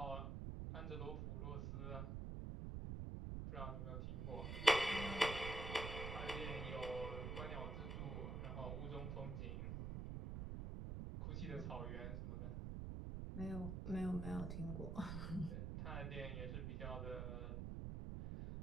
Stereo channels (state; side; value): noise; right; rumble, 2 dB below the sound